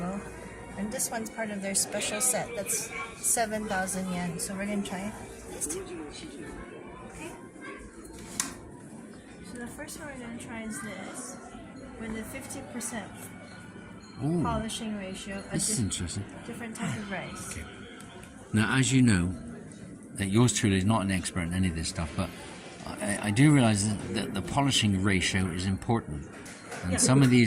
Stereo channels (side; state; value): both; identical; correlation 1.00